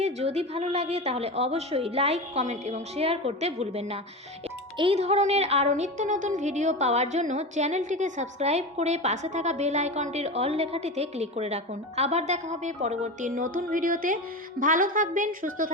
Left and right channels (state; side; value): normal; both; correlation 0.24